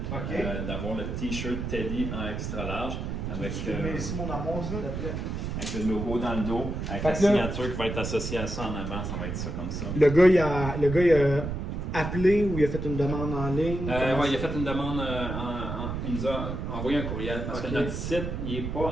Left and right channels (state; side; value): noise; right; rumble, 4 dB below the sound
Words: OK. d'avoir le t-shirt Teddy en extra large avec, Tu mets ici mon amour, s'il te plaît. avec le logo dans le dos, avec Fait la que là- signature qui va être associée à ça en avant, ça va être ça comme ça. Le gars, il a appelé ou il a fait une demande en ligne? Ouais, il a fait une demande, il nous a envoyé un courriel parce Ok. que notre site il n'est